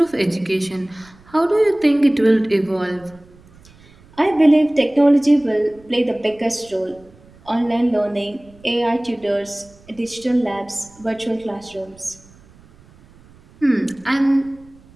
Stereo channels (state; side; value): noise; right; rumble, 26 dB below the sound